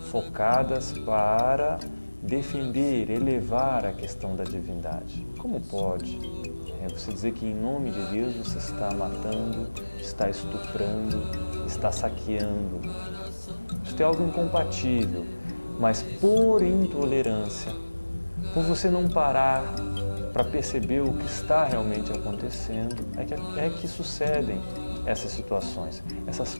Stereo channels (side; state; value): both; inverted; correlation -1.00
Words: focadas para defender, elevar a questão da divindade. Como pode você dizer que em nome de Deus você está matando, está estuprando, está saqueando? Isso é algo incompatível, mas por intolerância, por você não parar para perceber o que está realmente acontecendo, é que sucedem essas situações, essas